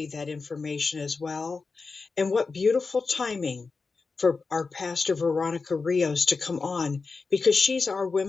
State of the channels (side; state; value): right; quieter; 4.4 dB